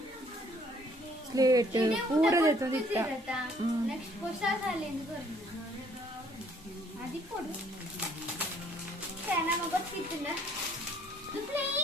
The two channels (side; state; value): both; normal; correlation 0.62